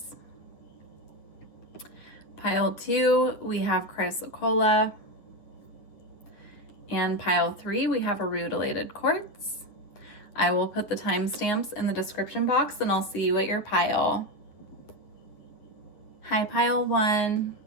Pile 2, we have Chrysocolla. And pile 3, we have a rutilated quartz. I will put the timestamps in the description box and I'll see you at your pile. Hi, pile 1.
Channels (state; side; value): late; right; 9.3 ms